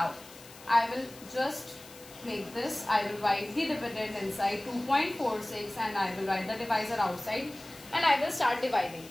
I will just make this. I will write the dividend inside 2.46 and I will write the divisor outside, and I will start dividing.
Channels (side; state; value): left; noise; hiss, 19 dB below the sound